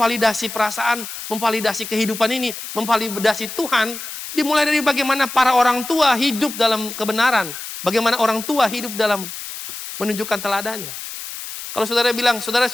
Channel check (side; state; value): left; noise; hiss, 9 dB below the sound